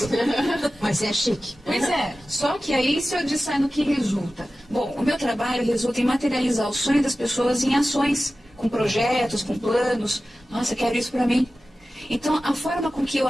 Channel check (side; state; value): both; normal; correlation 0.95